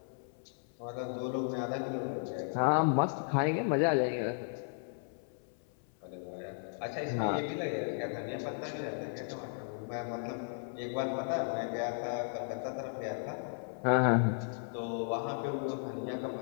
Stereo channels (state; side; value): silent; right; 54 dB below the other